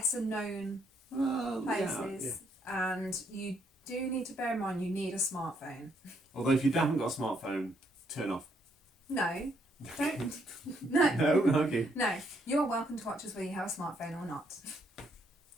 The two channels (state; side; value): normal; both; correlation 0.72